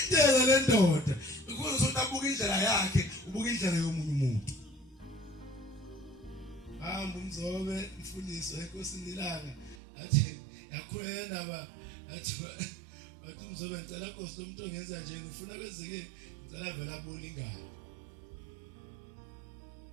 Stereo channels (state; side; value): drops out; left; at 9.8 s